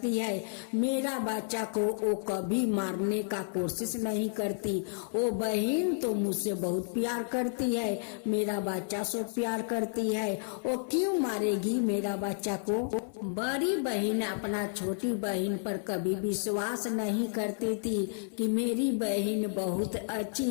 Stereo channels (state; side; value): silent; right; 57 dB below the other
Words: है, मेरा बच्चा को वो कभी मारने का कोशिश नहीं करती। वो बहन तो मुझसे बहुत प्यार करती है, मेरा बच्चा से प्यार करती है, वो क्यों मारेगी मेरा बच्चा को? बड़ी बहन अपना छोटी बहन पर कभी विश्वास नहीं करती थी कि मेरी बहन बहुत